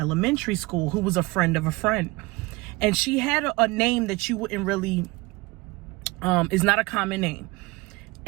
school who was a friend of a friend. And she had a name that you wouldn't really, is not a common name.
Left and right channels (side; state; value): left; quieter; 23.3 dB